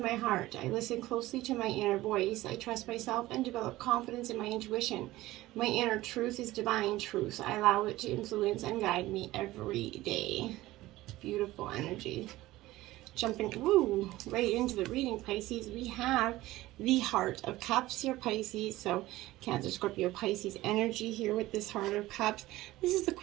my heart. I listen closely to my inner voice. I trust myself and develop confidence in my intuition. My inner truth is divine truth. I allow it to influence and guide me every day. Beautiful energy. Jumping right into the reading, Pisces, we have the Heart of Cups here, Pisces. So Cancer, Scorpio, Pisces energy here with this Heart of Cups. This is the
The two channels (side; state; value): left; quieter; 17.3 dB